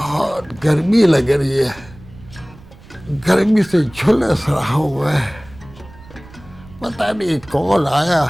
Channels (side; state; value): right; noise; rumble, 21 dB below the sound